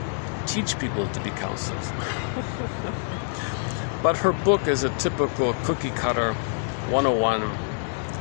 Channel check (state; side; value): silent; right; digital silence